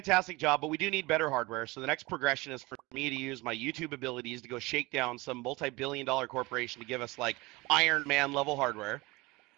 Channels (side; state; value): left; quieter; 22.7 dB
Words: job, but we do need better hardware. So the next progression is for me to use my YouTube abilities to go shake down some multi-billion-dollar corporation to give us like Iron Man level hardware.